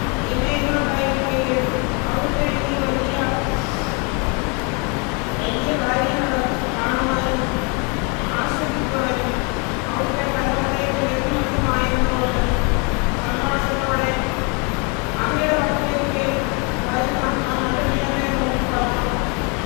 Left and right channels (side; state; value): right; quieter; 33.0 dB